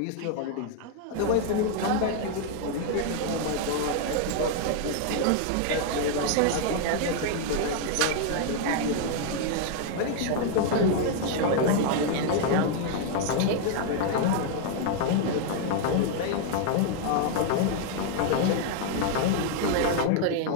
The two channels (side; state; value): both; different; correlation 0.00